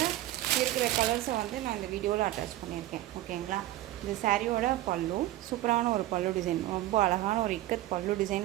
இருக்கிற கலர்ஸை வந்து நான் இந்த வீடியோவில் அட்டாச் பண்ணியிருக்கேன், ஓகேங்களா. இந்த சாரியோட பல்லு சூப்பரான ஒரு பல்லு டிசைன், ரொம்ப அழகான ஒரு இக்கத் பல்லு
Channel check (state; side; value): quieter; left; 15.3 dB